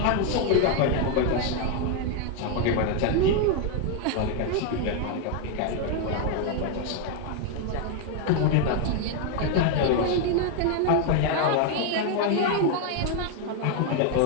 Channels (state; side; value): different; both; correlation 0.01